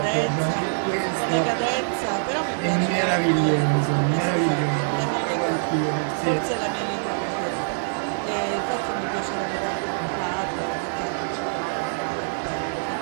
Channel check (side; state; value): left; silent; digital silence